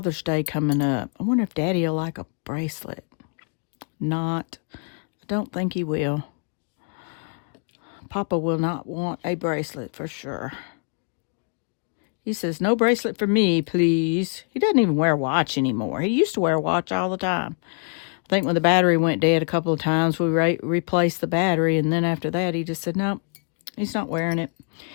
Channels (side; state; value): right; quieter; 39.6 dB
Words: Day coming up. I wonder if Daddy will like a bracelet. Not. I don't think he will. Papa will not want a bracelet for sure. He says, no bracelet for me, please. He doesn't even wear a watch anymore. He used to wear a watch all the time. I think when the battery went dead a couple of times, we replaced the battery. And then after that, he just said, no, he's not wearing it.